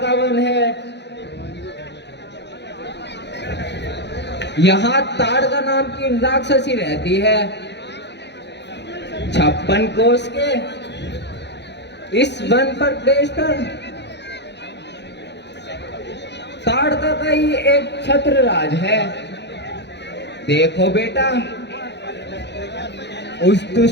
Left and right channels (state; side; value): late; right; 0.50 ms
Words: वन है। यहाँ ताड़का नाम की राक्षसी रहती है। 56 कोस के इस वन पर देशकर ताड़का का ही एक छत्र राज है। देखो बेटा, उस